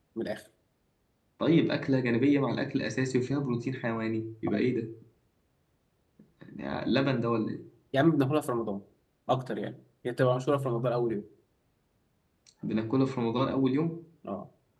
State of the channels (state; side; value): identical; both; correlation 1.00